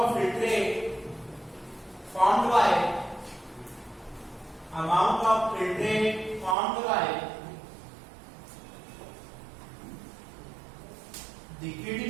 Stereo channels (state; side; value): drops out; left; at 6.6 s